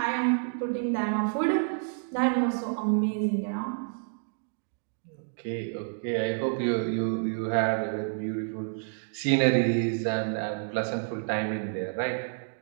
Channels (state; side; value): silent; left; digital silence